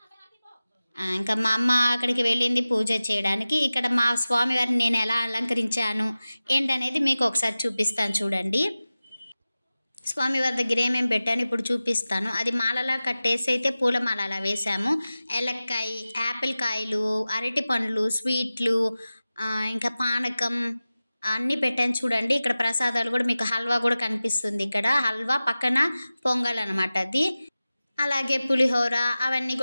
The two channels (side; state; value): both; inverted; correlation -0.96